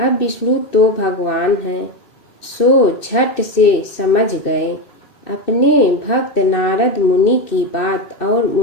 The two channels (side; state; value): right; late; 2.6 ms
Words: विष्णु तो भगवान हैं, सो झट से समझ गए अपने भक्त नारद मुनि की बात और